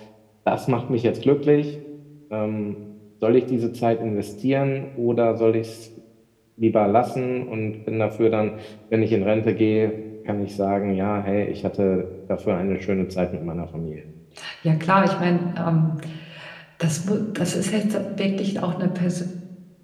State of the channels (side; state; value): both; identical; correlation 1.00